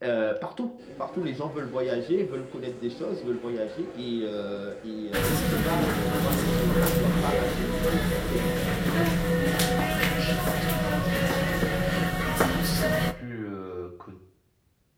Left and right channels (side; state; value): both; identical; correlation 1.00